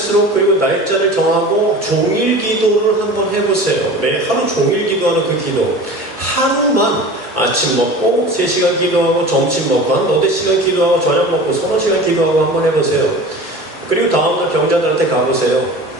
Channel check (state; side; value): normal; both; correlation 0.37